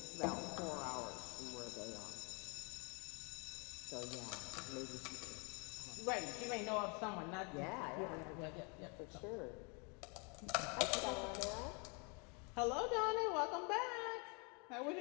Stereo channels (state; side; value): quieter; right; 33.6 dB